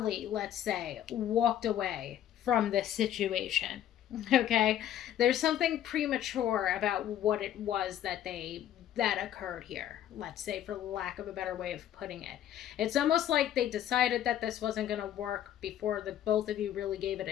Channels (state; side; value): quieter; right; 11.2 dB